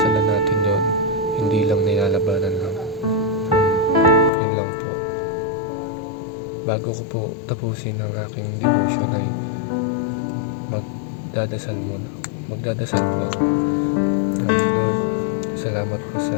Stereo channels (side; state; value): right; drops out; at 4.3 s